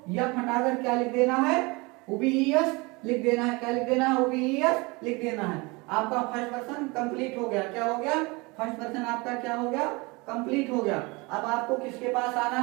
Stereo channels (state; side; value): quieter; left; 25.9 dB